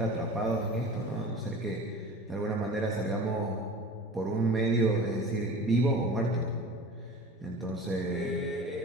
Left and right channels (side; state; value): both; normal; correlation 0.38